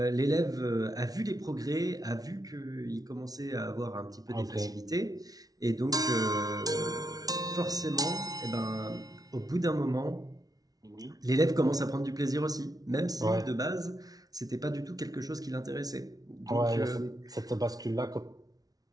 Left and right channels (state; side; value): late; left; 0.18 ms